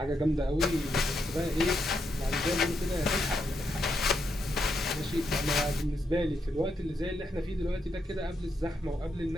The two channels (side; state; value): both; normal; correlation 0.81